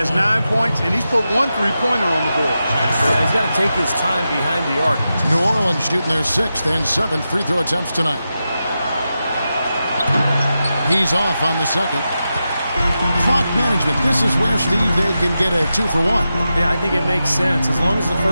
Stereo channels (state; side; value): inverted; both; correlation -0.90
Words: 9 points, and he's put 1 3-pointer on the board. Yeah, he's got to take his time behind the arc. New Orleans shooting their 6th and 7th free throw attempts tonight. He's off on the second. Clock management. This is where, Steve, they can get a 2 for 1. Yeah, I think it makes sense. As long as the